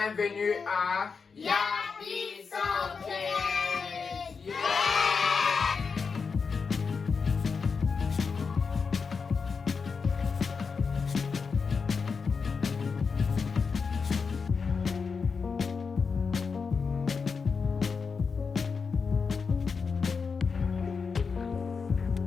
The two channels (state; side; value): quieter; right; 5.3 dB